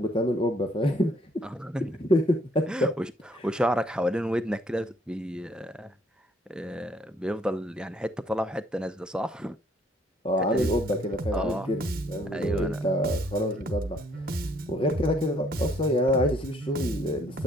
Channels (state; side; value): normal; both; correlation 0.65